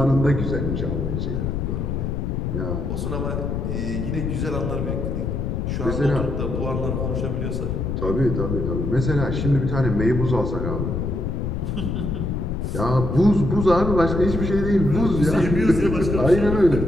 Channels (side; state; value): left; noise; rumble, 2 dB below the sound